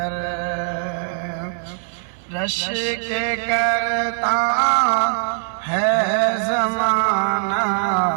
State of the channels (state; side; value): silent; left; 59 dB below the other